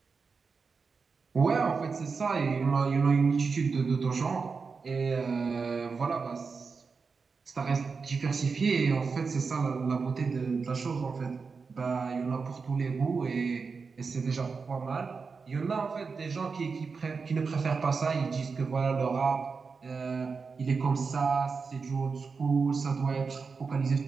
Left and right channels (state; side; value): quieter; left; 5.0 dB